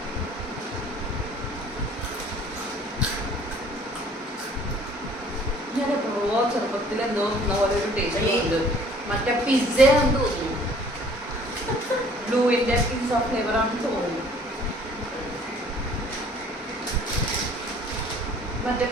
ഞാൻ എപ്പോഴോ ചെറുപ്പത്തിൽ എന്തോ പോലെ ഒരു ടേസ്റ്റ് ഉണ്ട്. മറ്റേ പിസ്സ ആണെന്ന് തോന്നുന്നു. ബ്ലൂവിന്റെ പിസ്സ ഫ്ലേവർ ആണെന്ന് തോന്നുന്നു. മറ്റേ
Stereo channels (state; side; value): normal; both; correlation 0.54